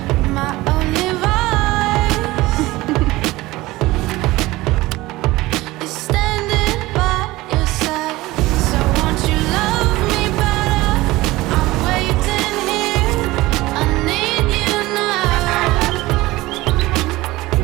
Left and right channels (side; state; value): left; quieter; 19.2 dB